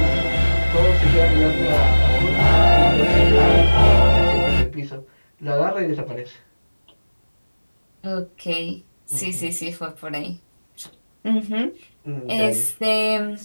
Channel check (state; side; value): inverted; both; correlation -1.00